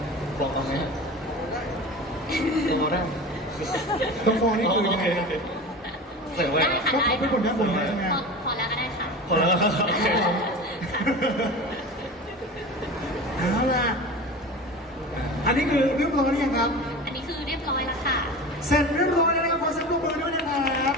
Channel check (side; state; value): both; normal; correlation 0.32